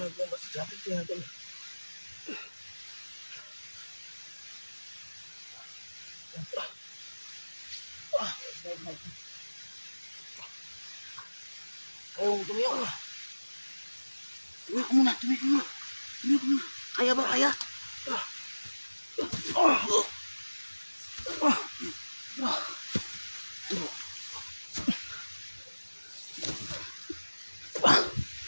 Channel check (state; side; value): inverted; both; correlation -1.00